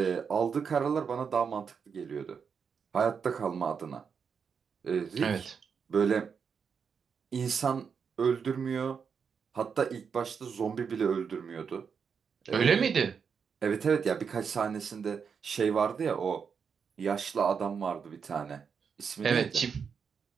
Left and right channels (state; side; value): quieter; left; 6.4 dB